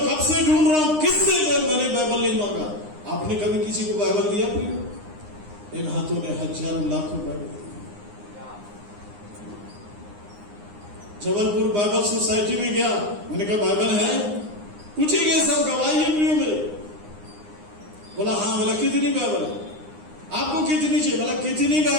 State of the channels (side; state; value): left; late; 9.8 ms